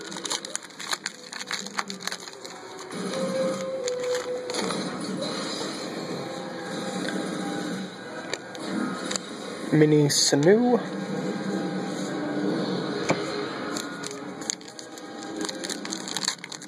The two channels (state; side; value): identical; both; correlation 1.00